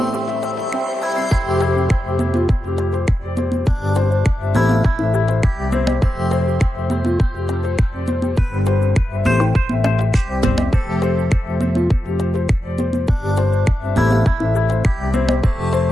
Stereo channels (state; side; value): normal; both; correlation 0.90